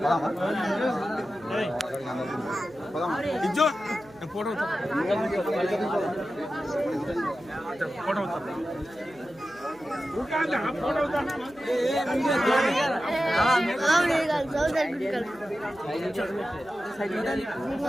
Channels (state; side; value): noise; right; hum, 26 dB below the sound